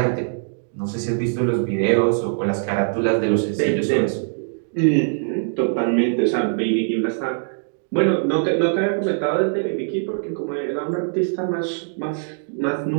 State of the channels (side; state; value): left; silent; digital silence